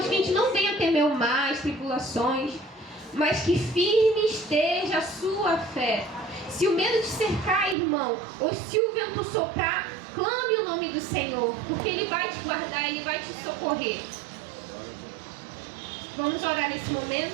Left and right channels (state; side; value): drops out; left; at 7.8 s